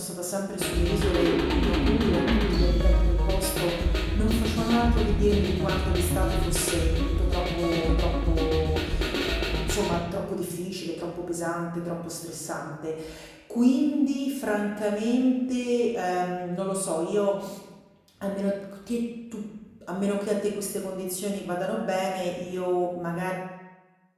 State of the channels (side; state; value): both; identical; correlation 1.00